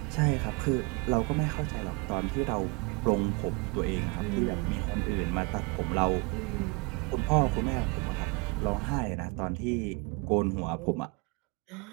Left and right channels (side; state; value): left; quieter; 30.0 dB